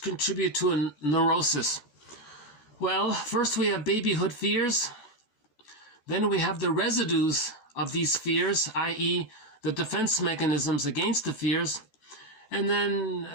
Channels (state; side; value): late; right; 14 ms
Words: a neurosis? Well, first we have babyhood fears. Then we have the residues of these fears, i.e. the defense mechanisms against the fears, and